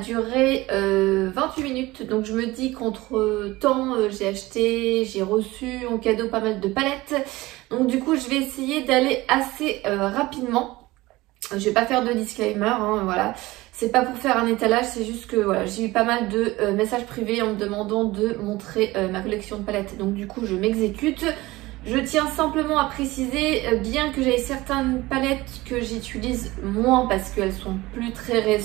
28 minutes, donc je me dis qu'entre temps j'ai reçu en cadeau pas mal de palettes, donc du coup je vais essayer d'aller assez rapidement. Je vais pas faire de disclaimer, hein, voilà, c'est pas pour faire un étalage, c'est juste que voilà, j'ai eu pas mal de messages privés en me demandant de montrer ma collection de palettes, donc du coup je m'exécute. Je tiens simplement à préciser, bien que j'ai certaines palettes que j'utilise moins parce qu'elles sont plus très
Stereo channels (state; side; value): quieter; left; 19.6 dB